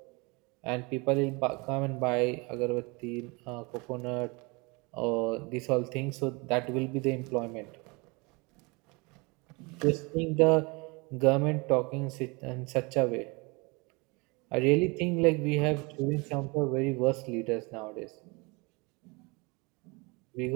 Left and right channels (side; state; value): left; quieter; 27.9 dB